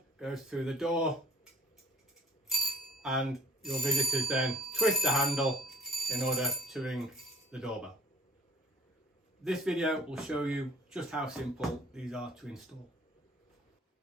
goes through the door and your visitors then twist the handle in order to ring the doorbell. This video will show you just how simple these are to install.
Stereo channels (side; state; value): both; normal; correlation 0.50